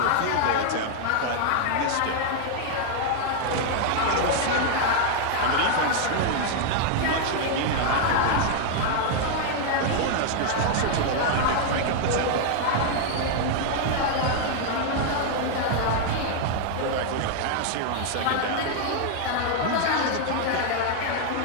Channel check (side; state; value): both; different; correlation 0.00